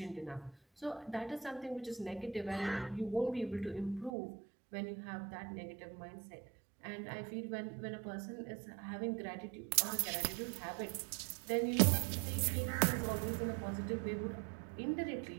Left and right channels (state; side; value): drops out; left; at 4.1 s